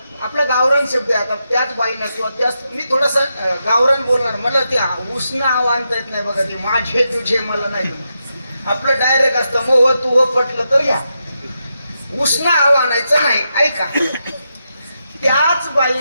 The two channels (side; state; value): both; inverted; correlation -0.86